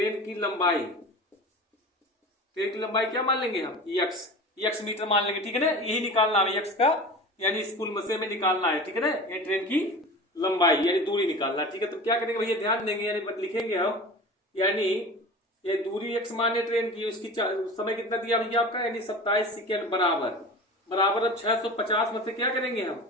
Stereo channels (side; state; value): both; normal; correlation 0.34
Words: की लंबाई क्या मान लेंगे हम, x मीटर मान लेंगे। ठीक है ना, यही निकालना है x का, यानी इस पुल मसे में निकालना है। ठीक है ना, ये ट्रेन की लंबाई यानी दूरी निकालना है। ठीक है, तो क्या करेंगे भैया, ध्यान देंगे, यानी लिखेंगे हम, यानी ये दूरी x माने ट्रेन की, उसकी समय कितना दिया भैया आपका, यानी 27 सेकेंड बराबर। अब 650 में से क्या करेंगे हम,